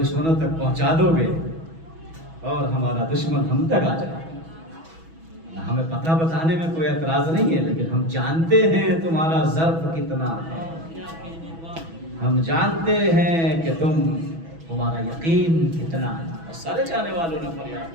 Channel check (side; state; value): left; late; 6.1 ms